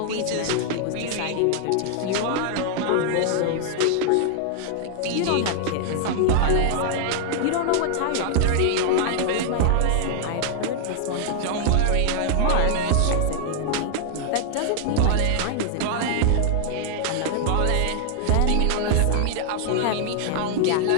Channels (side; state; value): both; different; correlation -0.01